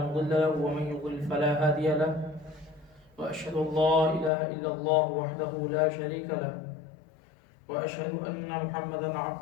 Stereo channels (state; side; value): drops out; right; at 4.3 s